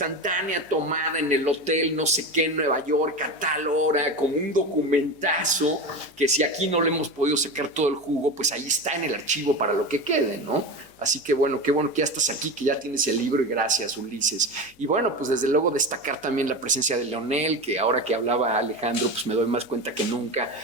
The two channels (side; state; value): left; noise; hum, 30 dB below the sound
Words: tomada en el hotel, no sé qué, en Nueva York, a tal hora, como un documentazo, que si aquí no le hemos podido sacar todo el jugo, pues ahí está en el archivo para lo que quede, ¿no? Así que bueno, qué bueno que ya estás aquí, que ya tienes el libro y gracias, Ulises. Y bueno, pues desde luego destacar también la presencia de Leonel, que ahora que hablaba Alejandro, pues me doy más cuenta que nunca